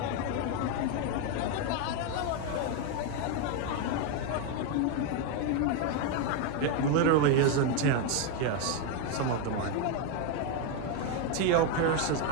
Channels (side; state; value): both; different; correlation 0.01